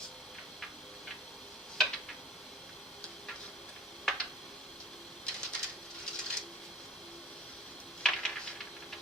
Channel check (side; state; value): both; normal; correlation 0.42